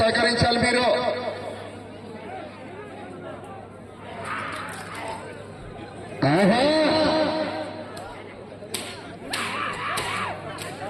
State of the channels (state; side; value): identical; both; correlation 1.00